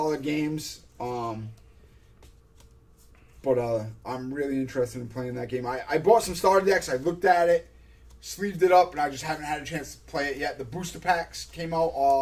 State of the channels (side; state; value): both; identical; correlation 1.00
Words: games. But I'm really interested in playing that game. I bought some starter decks. I looked at it, sleeved it up, and I just haven't had a chance to play it yet. The booster packs came